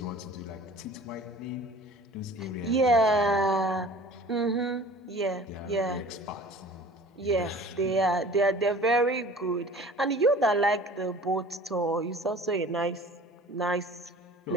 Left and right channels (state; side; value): normal; both; correlation 0.45